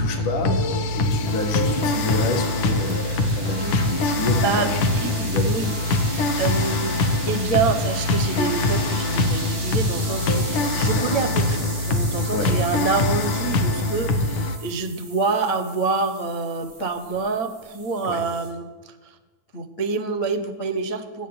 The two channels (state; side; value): late; right; 9.5 ms